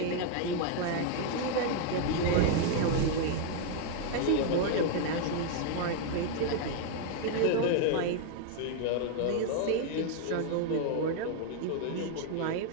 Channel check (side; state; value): both; different; correlation 0.00